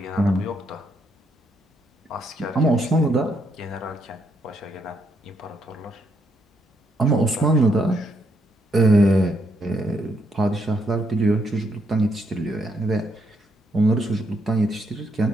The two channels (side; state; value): both; normal; correlation 0.76